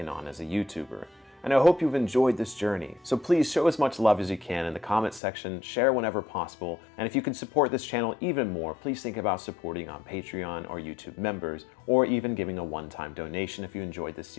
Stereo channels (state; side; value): drops out; right; at 5.2 s